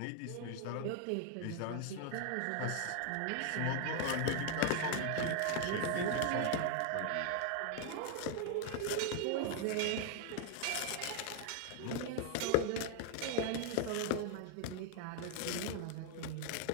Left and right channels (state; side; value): different; both; correlation 0.00